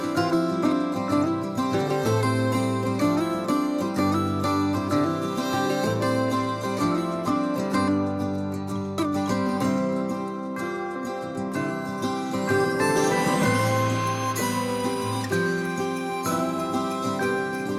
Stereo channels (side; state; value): both; identical; correlation 1.00